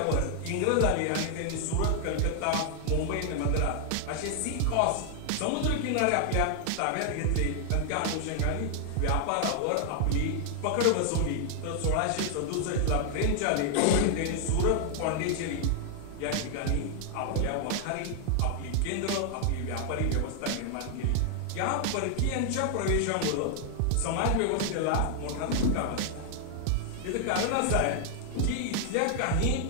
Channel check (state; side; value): different; both; correlation 0.00